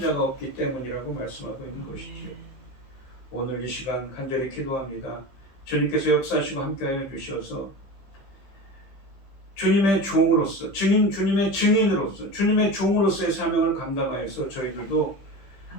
없기 때문이라고 말씀하고 있는 것이지요. 오늘 이 시간 간절히 기도합니다. 주님께서 역사하시고 함께하여 주셔서 주님의 종으로서 주님의 증인으로서 주님의 종으로서의 사명을 감당하여서 저희들도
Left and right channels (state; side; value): late; right; 15 ms